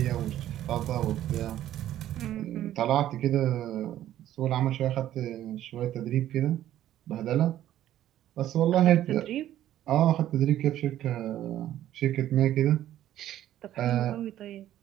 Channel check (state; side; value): quieter; left; 12.5 dB